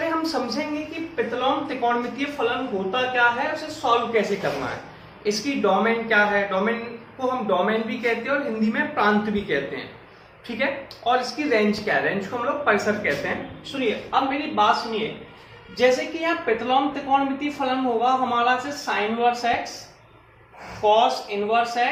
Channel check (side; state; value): both; identical; correlation 1.00